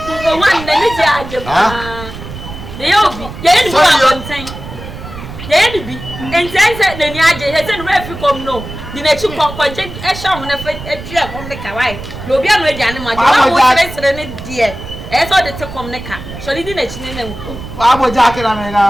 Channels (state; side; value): noise; right; rumble, 12 dB below the sound